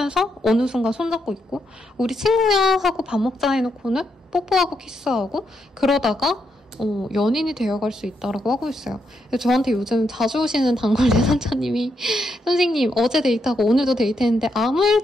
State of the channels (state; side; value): normal; both; correlation 0.80